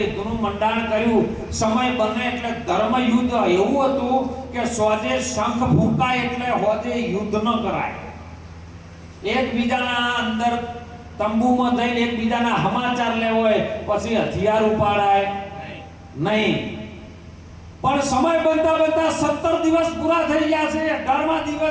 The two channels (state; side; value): identical; both; correlation 1.00